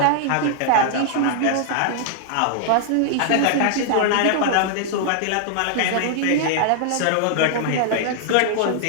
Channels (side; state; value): both; different; correlation -0.01